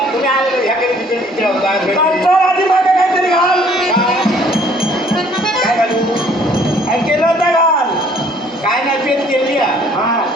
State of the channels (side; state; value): both; normal; correlation 0.59